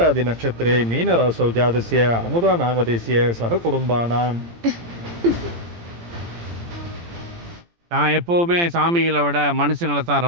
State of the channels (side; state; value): left; late; 17 ms